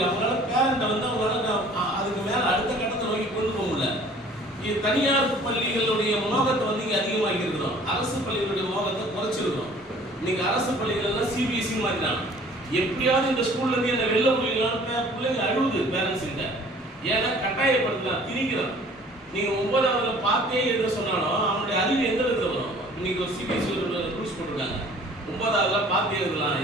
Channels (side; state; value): both; normal; correlation 0.51